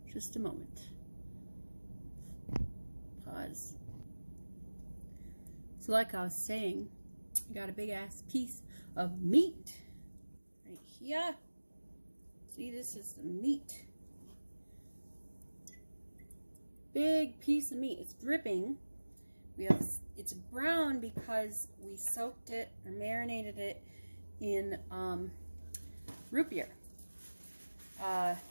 Just a moment. Pause. So like I was saying, I got a big ass piece of meat right here. See, this is the meat. Big piece of meat. It's dripping. It's brown because we soaked it or marinated it in root beer.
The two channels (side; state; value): both; inverted; correlation -1.00